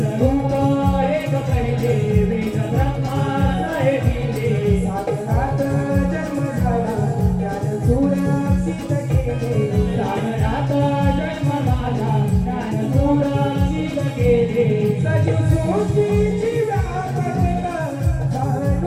आहे ग पहिले वेद ब्रह्माला गेले. सागरात जन्म झाला ज्ञान सुरक्षित केले, सागरात जन्म झाला ज्ञान सुरक्षित केले. सजीव सृष्टीची व्यापकता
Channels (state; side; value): identical; both; correlation 1.00